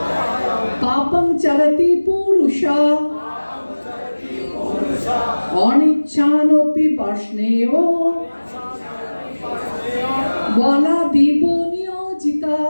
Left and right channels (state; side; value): inverted; both; correlation -1.00